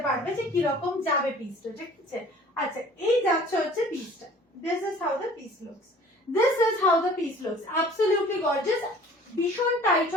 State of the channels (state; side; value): normal; both; correlation 0.49